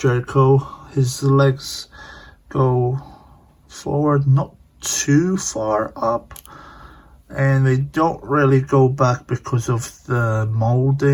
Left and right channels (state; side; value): identical; both; correlation 1.00